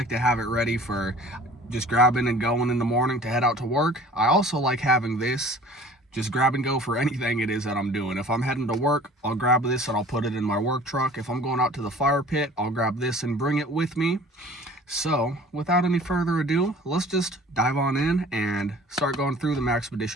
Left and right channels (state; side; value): normal; both; correlation 0.47